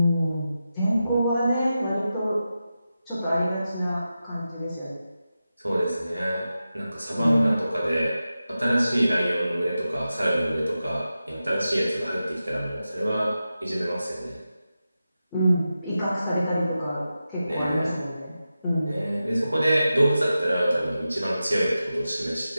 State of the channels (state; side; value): inverted; both; correlation -0.92